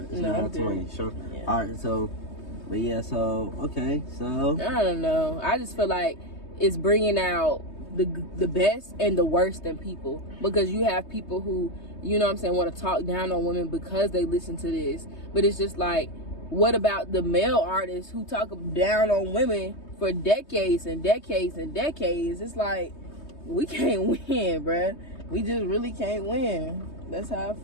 9:20. Sure. Yeah. All right. So, but yeah. So okay. So I don't know. I just feel like it's bringing out the best and the worst in people, because you have people who, you know what I'm saying, want to talk down on women because they listen to this. But it's just like, what about the male artists who talk down on women for decades and decades and decades? It's like, we can't win, bruh. We just really can't win. That's how I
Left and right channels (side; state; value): right; late; 3.2 ms